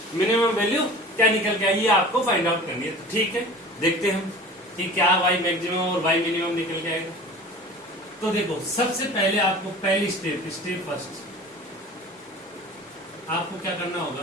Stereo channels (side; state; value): both; normal; correlation 0.40